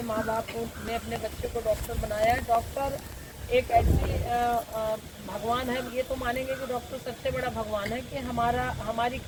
माँ बाप ने अपने बच्चे को डॉक्टर बनाया है, डॉक्टर एक ऐसी भगवान है, ये तो मानेंगे कि डॉक्टर सबसे बड़ा भगवान है कि हमारी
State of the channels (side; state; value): both; identical; correlation 1.00